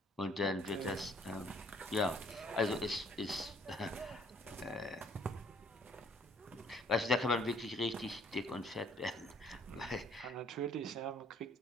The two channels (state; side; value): normal; both; correlation 0.61